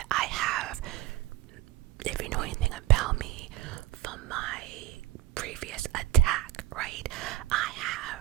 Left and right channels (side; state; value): left; quieter; 13.5 dB